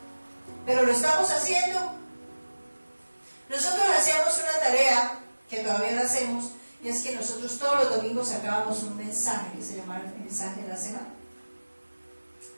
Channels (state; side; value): inverted; both; correlation -1.00